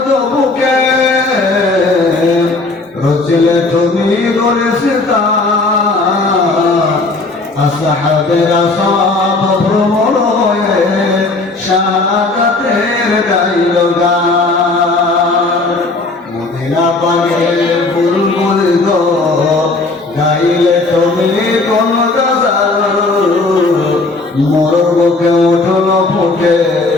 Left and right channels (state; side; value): quieter; right; 3.4 dB